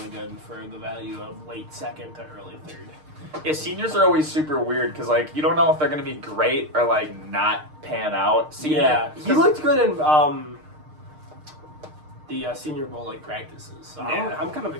good for the value of late second to early third. Yeah, seniors are always super weird because, like, you don't know if they're going to be great or, like, not pan out. He looked good in the Senior Bowl, like, practices. So I'm kind of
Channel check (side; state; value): left; late; 6.5 ms